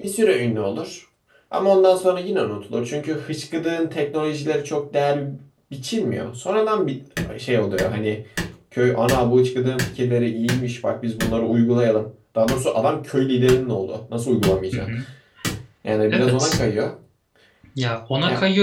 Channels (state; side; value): identical; both; correlation 1.00